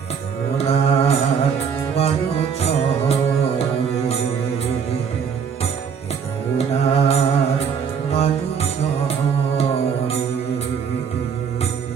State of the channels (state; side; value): quieter; left; 6.8 dB